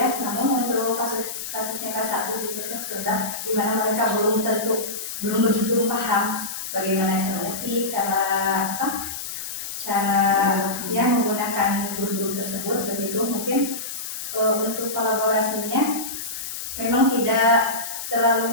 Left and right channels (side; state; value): left; noise; hiss, 7 dB below the sound